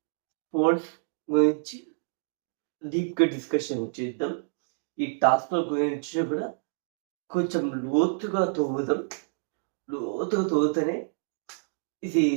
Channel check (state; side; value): silent; left; digital silence